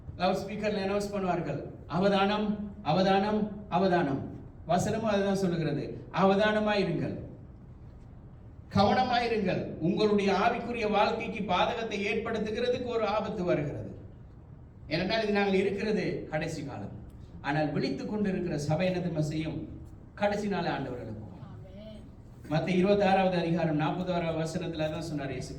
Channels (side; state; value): both; identical; correlation 1.00